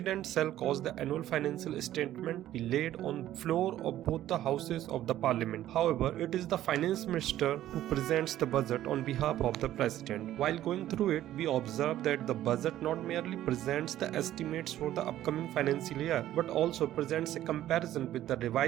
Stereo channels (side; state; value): left; quieter; 13.1 dB